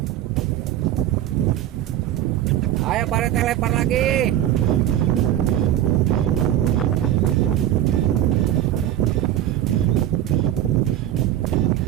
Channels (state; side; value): quieter; left; 12.3 dB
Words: Ayo Pak Rete, lempar lagi.